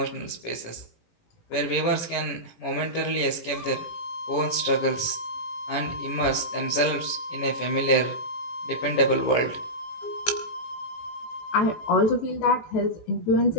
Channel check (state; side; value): late; right; 17 ms